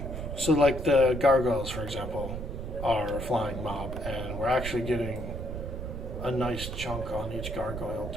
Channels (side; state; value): right; noise; rumble, 6 dB below the sound